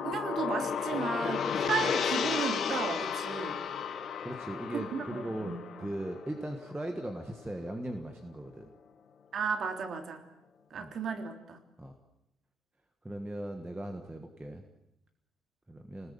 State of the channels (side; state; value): both; normal; correlation 0.71